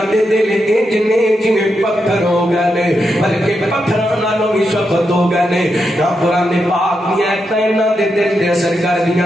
دے دل انج نے جویں پتھر ہو گئے نے بلکہ پتھراں نالوں بھی سخت ہو گئے نے نہ قرآن پاک دی آیتاں انہاں دے دل تے اثر کر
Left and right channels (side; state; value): both; normal; correlation 0.85